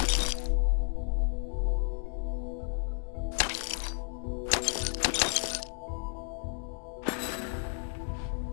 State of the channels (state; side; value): silent; right; 56 dB below the other